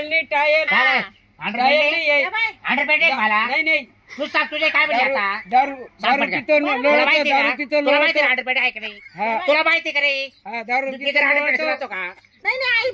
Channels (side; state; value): both; identical; correlation 1.00